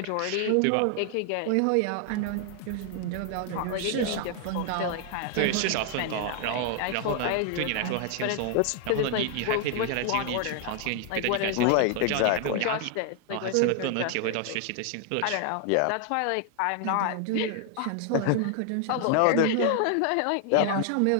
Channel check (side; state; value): both; different; correlation 0.00